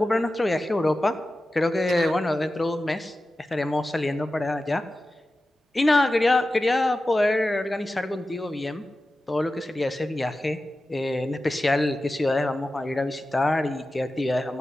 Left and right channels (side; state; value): both; normal; correlation 0.94